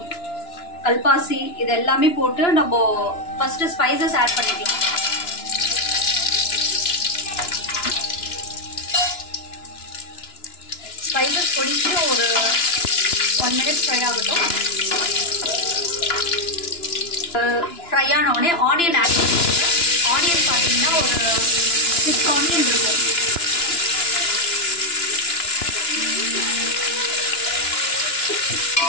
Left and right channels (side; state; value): right; late; 2.9 ms